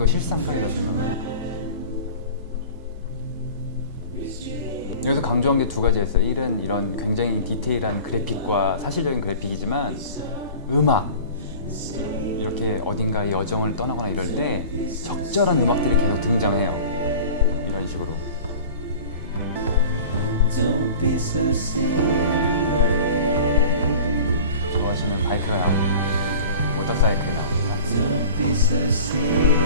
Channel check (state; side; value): inverted; both; correlation -0.41